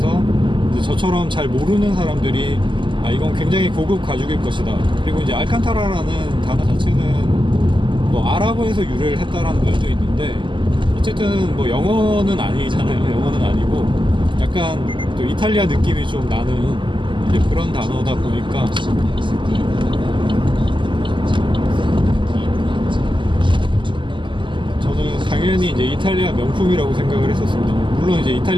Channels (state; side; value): late; left; 0.24 ms